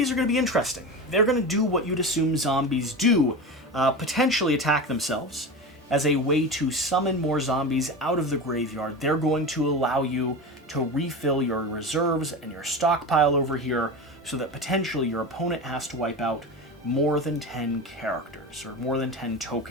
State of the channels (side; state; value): both; normal; correlation 0.26